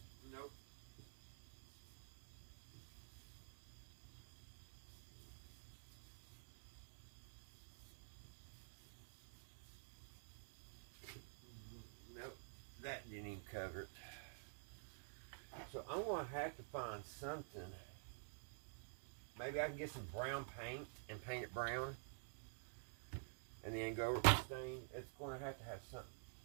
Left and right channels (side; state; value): left; silent; digital silence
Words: Nope. Nope. That didn't even cover it. So I'm going to have to find something. Maybe I can get some brown paint and paint it brown. And then go over the stain. It's going to have something.